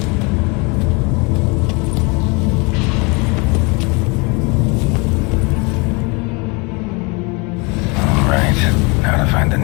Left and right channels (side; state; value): right; quieter; 29.3 dB